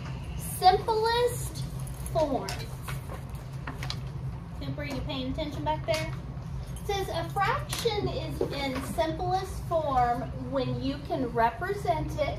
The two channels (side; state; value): both; identical; correlation 1.00